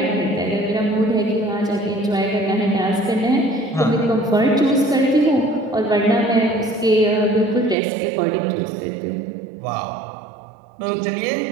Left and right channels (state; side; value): drops out; left; at 7.8 s